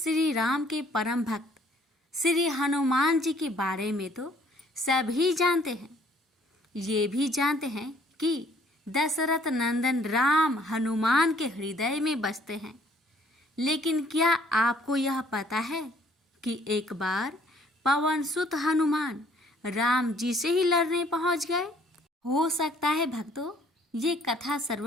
राम के परम भक्त श्री हनुमान जी के बारे में तो सभी जानते हैं। ये भी जानते हैं कि दशरथ नंदन राम हनुमान के हृदय में बसते हैं। लेकिन क्या आपको यह पता है कि एक बार पवन सुत हनुमान राम जी से ही लड़ने पहुंच गए? हो सकता है भक्तों, ये कथा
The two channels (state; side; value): normal; both; correlation 0.60